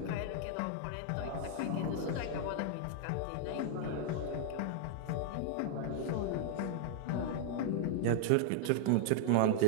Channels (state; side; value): different; both; correlation -0.01